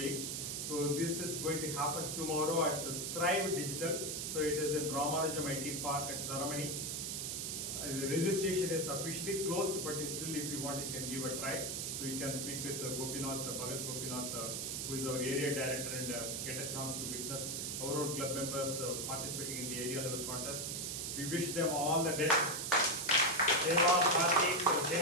So this is going to happen tomorrow at Thrive Digital. So it is in Ramanujam IT Park at Dharamani. The registration is officially closed, but still if you want, you can give a try. So you can speak with Gopinath, Bharath Gopinath, who is our area director, and get a chance to witness our own club members participating in the area level contest. We wish them all the best. Deva, Karthick,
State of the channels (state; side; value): noise; right; hiss, 3 dB below the sound